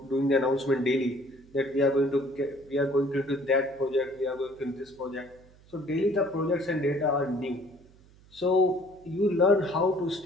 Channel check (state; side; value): noise; right; hum, 26 dB below the sound